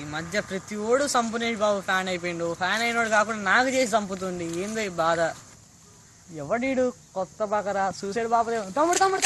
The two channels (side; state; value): both; identical; correlation 1.00